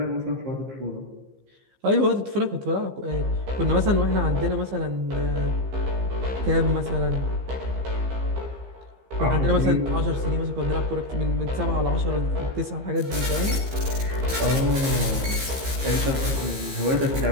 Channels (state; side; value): late; left; 15 ms